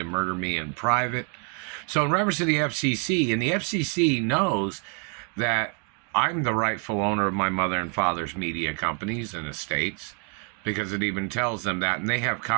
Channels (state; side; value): quieter; left; 39.3 dB